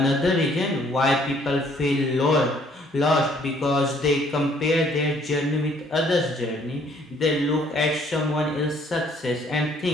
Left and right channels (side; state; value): both; normal; correlation 0.62